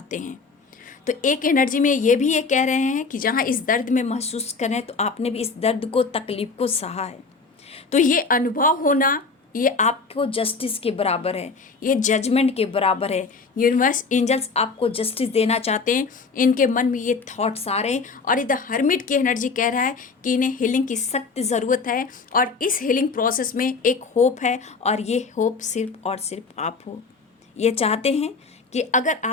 हैं। तो एक एनर्जी में ये भी ये कह रहे हैं कि जहाँ इस दर्द में महसूस करें, तो आपने भी इस दर्द को, तकलीफ को सहा है, तो ये अनुभव होना ये आपको जस्टिस के बराबर है, ये जजमेंट के बराबर है। यूनिवर्स एंजल्स आपको जस्टिस देना चाहते हैं, इनके मन में ये थॉट्स आ रहे हैं और इधर हर्मिट की एनर्जी कह रहा है कि इन्हें हीलिंग की सख्त ज़रूरत है और इस हीलिंग प्रोसेस में एक होप है और ये होप सिर्फ और सिर्फ आप हो। ये चाहते हैं कि अगर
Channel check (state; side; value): quieter; right; 4.5 dB